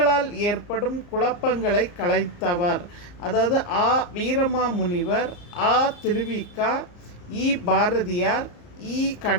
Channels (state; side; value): late; right; 34 ms